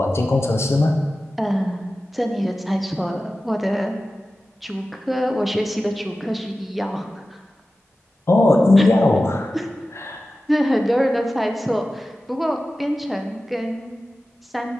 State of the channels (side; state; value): both; normal; correlation 0.95